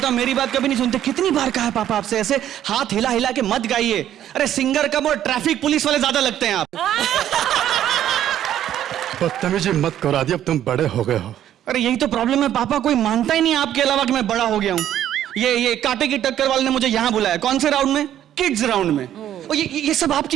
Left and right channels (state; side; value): quieter; left; 11.3 dB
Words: हूं मेरी बात कभी नहीं सुनते। कितनी बार कहा है पापा आपसे, ऐसे हाथ हिला हिला के मत गाइए। अरे सिंगर कम और ट्रैफिक पुलिस वाले ज्यादा लगते हैं आप। बदतमीजी मत करो आदि, अब तुम बड़े हो गए हो। अरे यही तो प्रॉब्लम है पापा, कोई मानता ही नहीं आपके अलावा कि मैं बड़ा हो गया हूँ। ये कांटे की टक्कर वाले ने मुझे यहाँ बुलाया। कौन से राउंड में? किड्स राउंड में। और ये सब